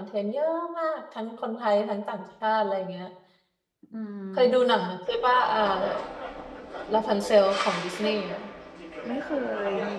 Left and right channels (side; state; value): both; identical; correlation 1.00